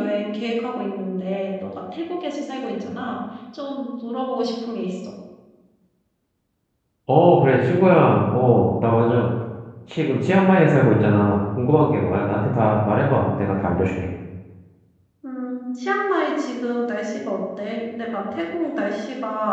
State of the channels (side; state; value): both; identical; correlation 1.00